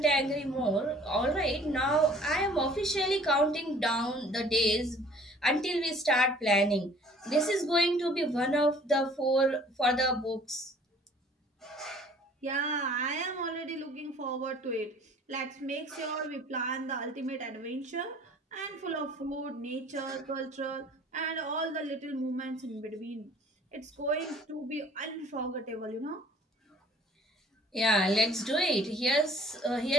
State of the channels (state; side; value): normal; both; correlation 0.53